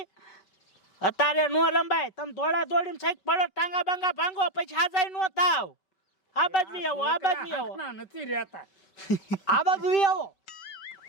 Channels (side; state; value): right; late; 5.3 ms